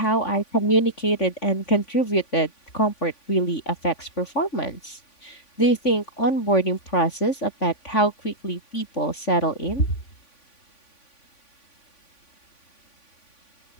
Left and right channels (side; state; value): right; late; 3.5 ms